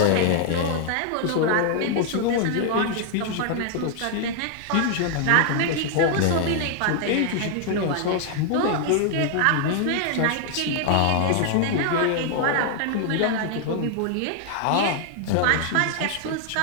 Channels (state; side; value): different; both; correlation 0.00